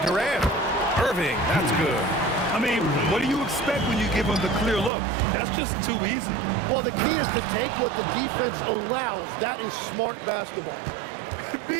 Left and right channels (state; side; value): drops out; left; at 4.9 s